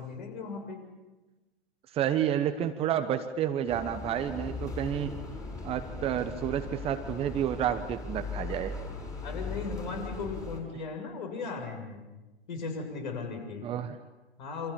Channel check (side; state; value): left; quieter; 5.2 dB